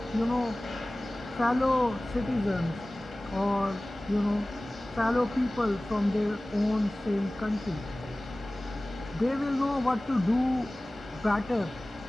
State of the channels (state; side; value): normal; both; correlation 0.98